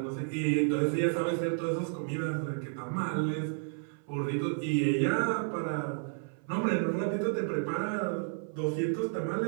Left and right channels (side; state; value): left; silent; 57 dB below the other